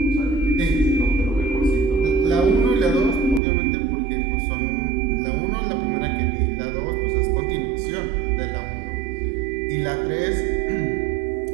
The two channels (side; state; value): left; drops out; at 3.4 s